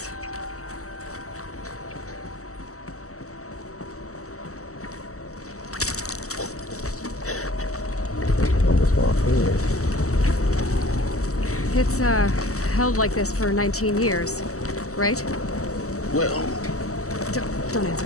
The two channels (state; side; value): late; right; 0.65 ms